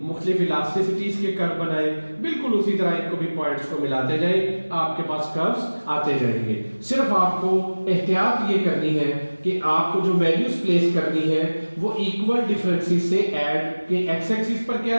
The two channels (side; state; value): both; inverted; correlation -1.00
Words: मुख्तलिफ इलास्टिसिटीज के कर्व बनाए, बिल्कुल उसी तरह इनको भी पॉइंट्स को मिलाते जाए, आपके पास कर्व्स आते जाएंगे। सिर्फ आपको एहतियात ये करनी है कि आपको जो वैल्यूज प्लेस करनी है वो इक्वल डिफरेंसेस से ऐड के एक्स एक्सिस पर